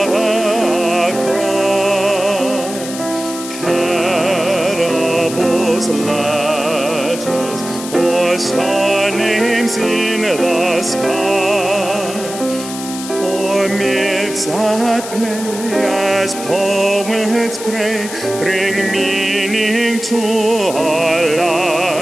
our cry, parables, letters, or star names in the sky, or myths that play as poets pray, bring meaning to our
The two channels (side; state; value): left; noise; hiss, 10 dB below the sound